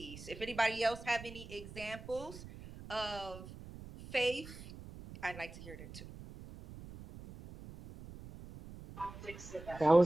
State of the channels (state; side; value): noise; right; rumble, 14 dB below the sound